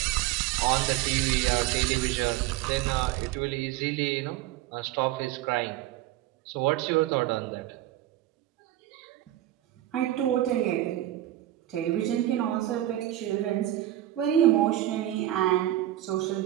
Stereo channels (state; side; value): quieter; left; 14.1 dB